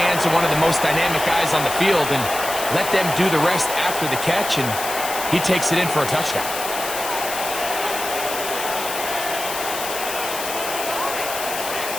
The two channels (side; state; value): left; noise; hiss, 6 dB below the sound